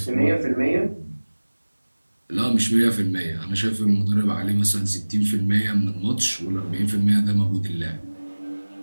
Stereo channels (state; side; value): inverted; both; correlation -1.00